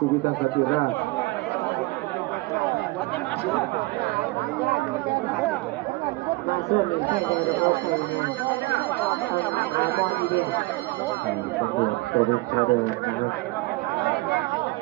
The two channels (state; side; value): quieter; left; 22.2 dB